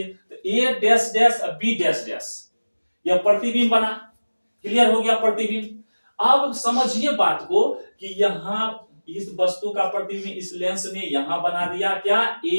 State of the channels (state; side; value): inverted; both; correlation -1.00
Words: तो A dash dash B dash dash, यह प्रतिबिंब बना। क्लियर हो गया प्रतिबिंब। अब समझिए बात को कि यहां इस वस्तु का प्रतिबिंब इस लेंस ने यहां बना दिया क्या,